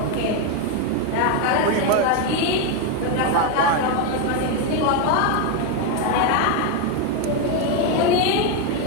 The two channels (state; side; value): different; both; correlation 0.02